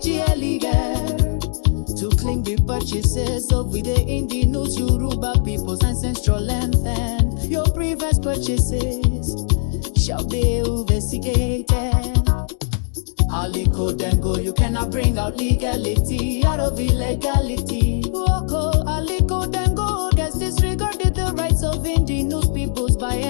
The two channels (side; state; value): right; silent; digital silence